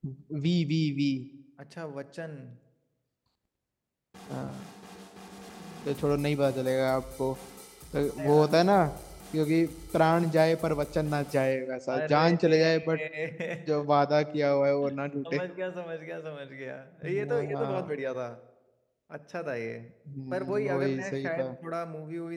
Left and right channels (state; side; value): identical; both; correlation 1.00